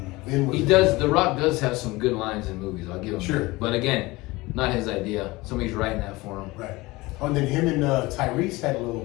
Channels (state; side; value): quieter; right; 21.4 dB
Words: then The Rock does have some good lines in movies, I'll give him sure. that. But again, not his idea. Somebody's writing that for him. Right. Oh, and then him and Tyrese had a